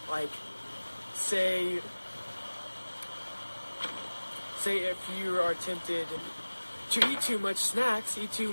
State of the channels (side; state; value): both; inverted; correlation -1.00